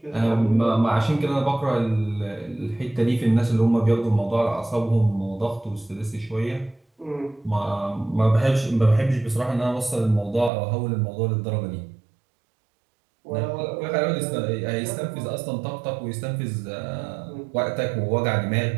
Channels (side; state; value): left; drops out; at 10.5 s